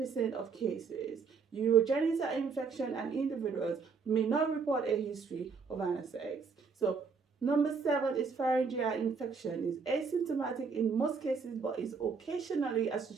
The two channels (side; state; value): left; quieter; 5.3 dB